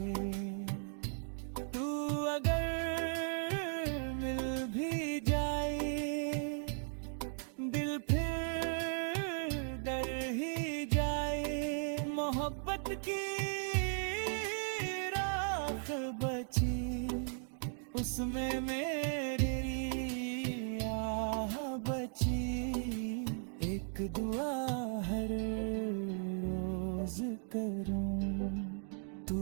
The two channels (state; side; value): silent; left; 53 dB below the other